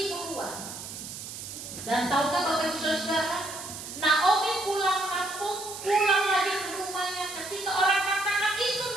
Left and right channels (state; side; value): noise; right; hiss, 10 dB below the sound